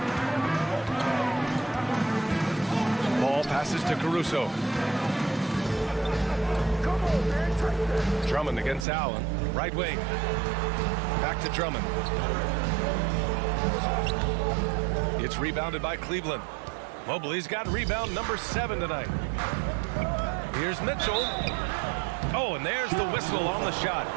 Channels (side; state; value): left; drops out; at 8.8 s